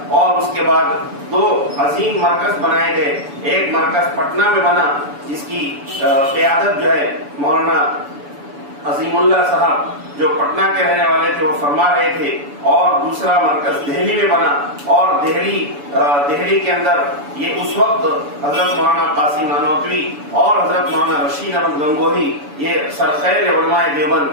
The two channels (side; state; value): left; late; 7.0 ms